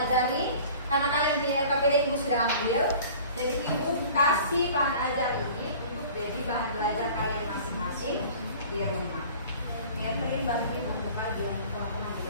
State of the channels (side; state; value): both; inverted; correlation -0.45